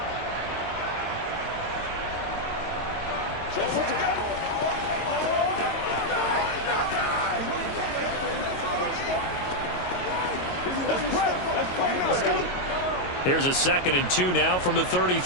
Here's a 2nd and 2 now from the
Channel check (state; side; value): late; right; 22 ms